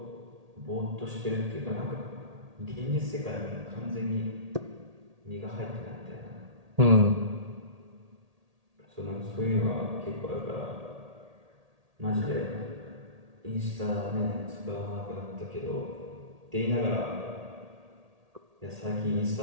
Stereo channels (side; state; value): left; late; 1.8 ms